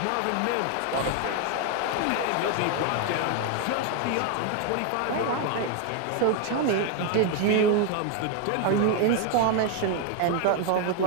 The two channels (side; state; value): both; different; correlation 0.01